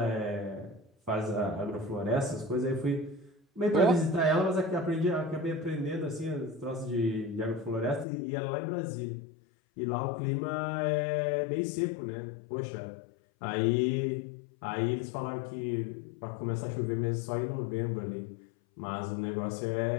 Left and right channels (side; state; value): right; drops out; at 8.1 s